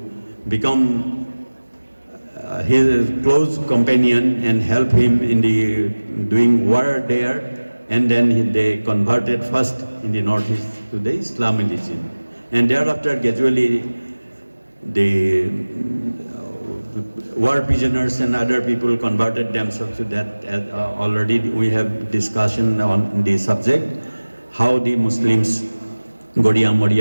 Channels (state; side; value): inverted; both; correlation -1.00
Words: become his close companion and help him in the doing war there, and then they converted first in the northeast to the Islam religion, and thereafter gradually the war prisoners and other people converted themselves to that. Already we have discussion on the subject, how the Muslims, Gaudiya,